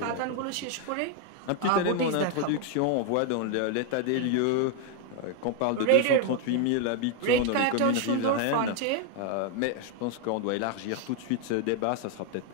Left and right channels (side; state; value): both; different; correlation 0.00